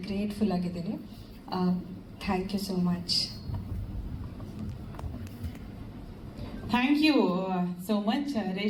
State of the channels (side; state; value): both; identical; correlation 1.00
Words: ಗ್ರೇಟ್ಫುಲ್ ಆಗಿದ್ದೀನಿ. Thank you so much. Thank you so much